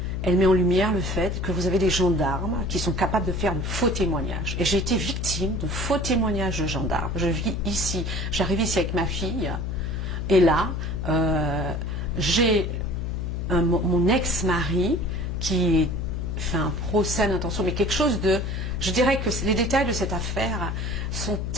Elle met en lumière le fait que vous avez des gendarmes qui sont capables de faire de faux témoignages. Et j'ai été victime de faux témoignages de gendarmes. Je vis ici, j'arrive ici avec ma fille, et là, j'ai mon ex-mari qui fait un procès d'intention, mais quelque chose de... Je dirais que les détails de cette affaire sont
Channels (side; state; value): left; noise; hum, 2 dB below the sound